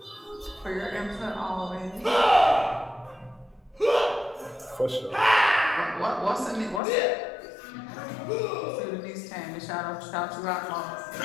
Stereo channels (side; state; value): right; drops out; at 6.8 s